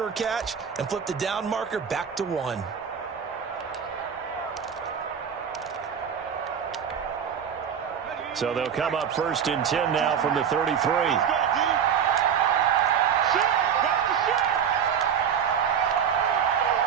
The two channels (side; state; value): left; quieter; 7.8 dB